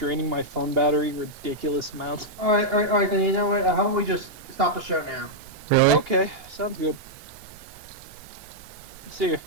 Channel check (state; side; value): late; left; 2.8 ms